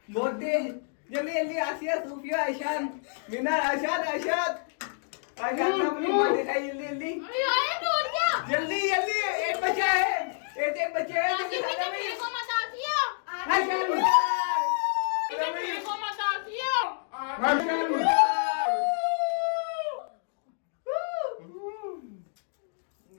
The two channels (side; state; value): right; silent; digital silence